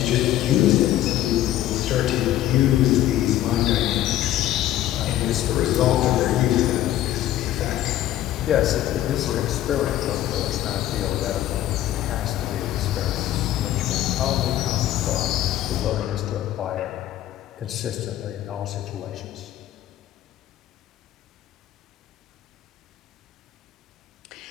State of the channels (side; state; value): right; quieter; 13.2 dB